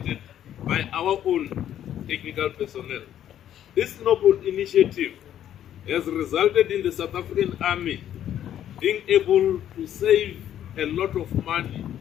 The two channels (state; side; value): quieter; right; 10.9 dB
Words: by our own technical personnel. This noble initiative has resulted in the South African Army being able to save a lot of money,